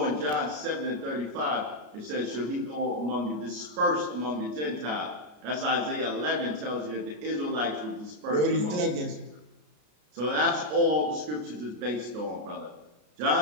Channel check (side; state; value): left; late; 33 ms